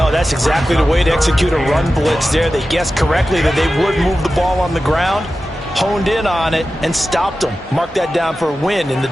that's exactly the way to execute a run blitz there. They guessed correctly that they would move the ball on the ground, honed in on it, and stopped them. Mark that down for a win in the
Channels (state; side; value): normal; both; correlation 0.94